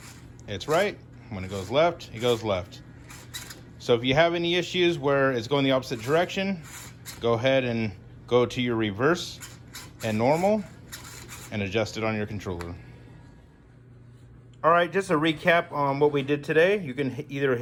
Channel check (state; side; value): identical; both; correlation 1.00